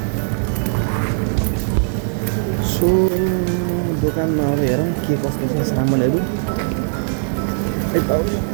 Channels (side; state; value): left; silent; 61 dB below the other